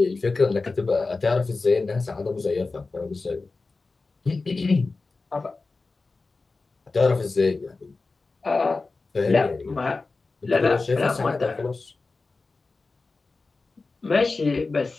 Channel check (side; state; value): right; quieter; 3.8 dB